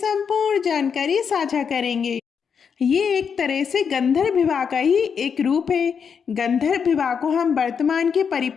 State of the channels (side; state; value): right; quieter; 6.6 dB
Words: जानकारी साझा करेंगे। ये एक तरह से गंधर्व विवाह का ही एक रूप है। गंधर्व विवाह को हम वर्तमान के